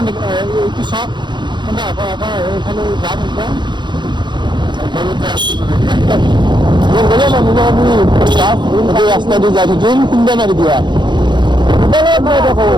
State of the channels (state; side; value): late; left; 0.22 ms